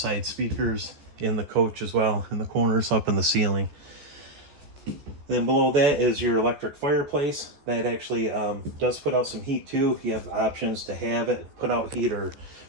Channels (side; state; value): left; late; 14 ms